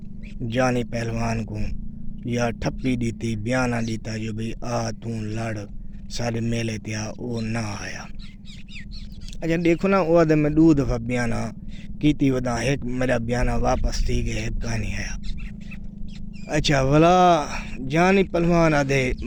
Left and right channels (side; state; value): both; identical; correlation 1.00